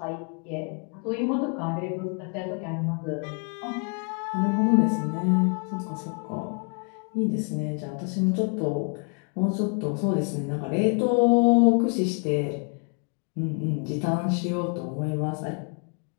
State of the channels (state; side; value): quieter; right; 37.9 dB